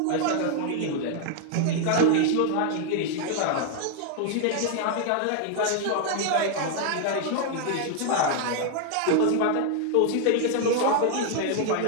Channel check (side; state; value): both; different; correlation 0.00